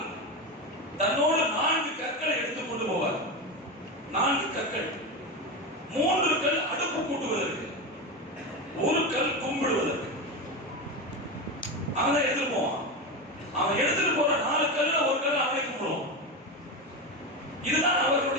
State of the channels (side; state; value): both; normal; correlation 0.18